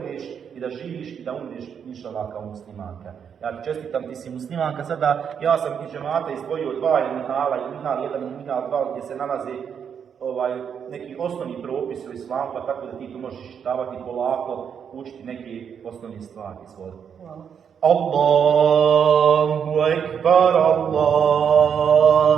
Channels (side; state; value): left; quieter; 7.6 dB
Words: i da živiš i da umreš inšallah kao muslimanka. Ja ti čestitam, ti si muslimanka. Sada ja sam iz džemata izdvojio dva minhala, minhal 1 i minhal 2 gdje se nalaze neki osnovni propis u islamu, pa tako da ti tu možeš čitavati polako, učiti neke osnovne stvari. Hvala. Allahu ekbar,